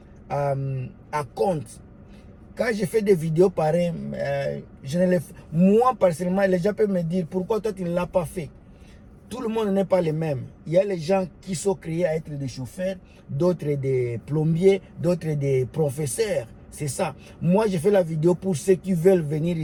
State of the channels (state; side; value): identical; both; correlation 1.00